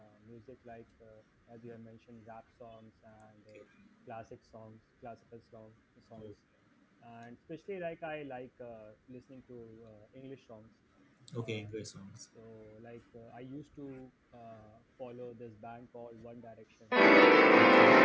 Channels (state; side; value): identical; both; correlation 1.00